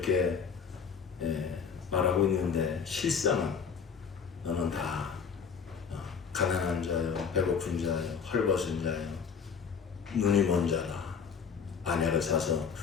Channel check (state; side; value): quieter; right; 6.3 dB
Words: 말하고 있는데 실상은 너는 다 가난한 자요, 배고픈 자요, 헐벗은 자요, 눈이 먼 자라, 아내를 사서